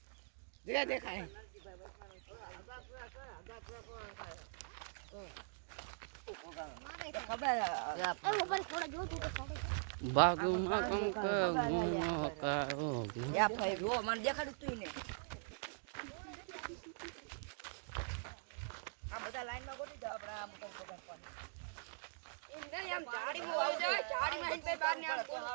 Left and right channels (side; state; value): left; silent; digital silence